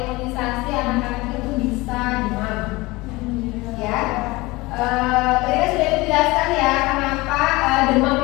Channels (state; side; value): quieter; right; 21.8 dB